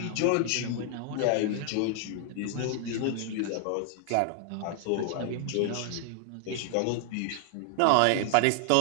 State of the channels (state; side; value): different; both; correlation 0.00